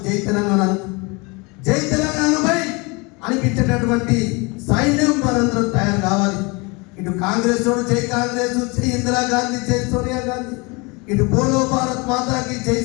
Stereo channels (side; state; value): right; quieter; 28.0 dB